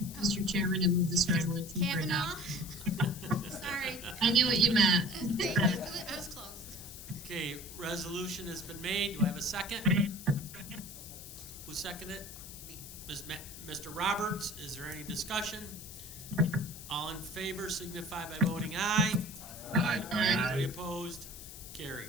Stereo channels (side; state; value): left; noise; hiss, 13 dB below the sound